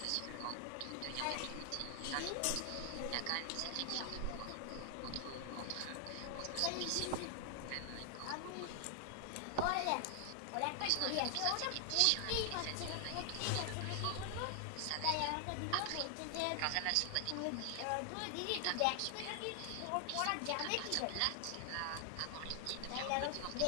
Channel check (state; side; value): different; both; correlation 0.00